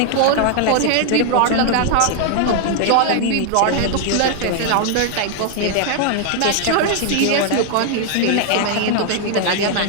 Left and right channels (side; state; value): both; different; correlation 0.00